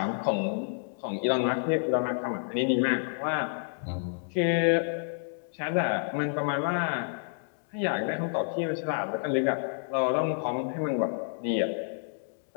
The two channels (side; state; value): right; silent; digital silence